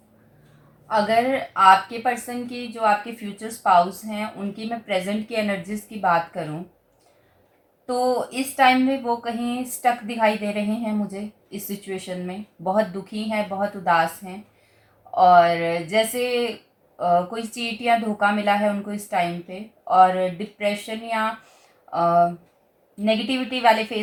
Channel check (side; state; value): both; identical; correlation 1.00